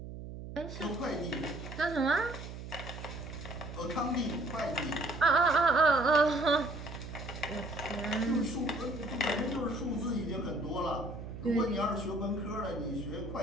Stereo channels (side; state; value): right; noise; hum, 10 dB below the sound